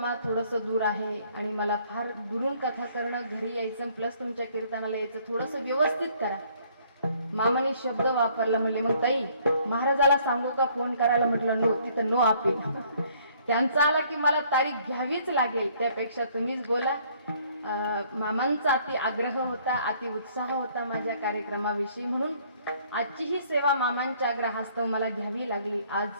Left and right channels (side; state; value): both; inverted; correlation -0.61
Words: थोडंसं दूर आहे आणि मला फार दुरून कथा करणं घरी यायचं प्लस तुमच्या कीर्तनाला यायचं थोडंसं व्यवस्थित करा. मामाने शब्द वापरला म्हणले मग ताई महाराजाला सांगू का फोन करायला. म्हटलं नो तिथं नो अपील. त्यांचा आला की मला तारीख घ्यावीच लागेल त्यापेक्षा तुम्हीच बोला. मामांचा अति आग्रह होता अति उत्साह होता माझ्या कार्यक्रमाविषयी म्हणून आजची ही सेवा मामांच्या आग्रहास्तव मला घ्यावी लागली. आज